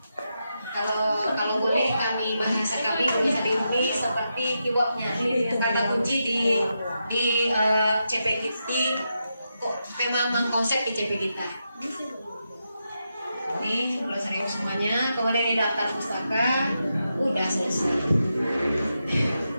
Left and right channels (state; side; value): inverted; both; correlation -0.86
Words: Kalau boleh bahasa kami bisa diundi seperti keywordnya kata kunci di CP kita kok memang konsep di CP kita. Ini 11.000 semuanya, kemudian ini daftar pustaka udah selesai.